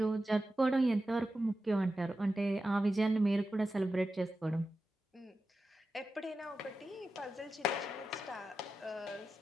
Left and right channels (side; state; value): both; normal; correlation 0.92